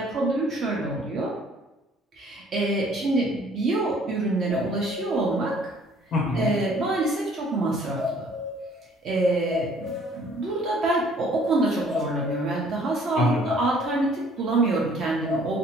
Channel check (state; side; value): normal; both; correlation 0.58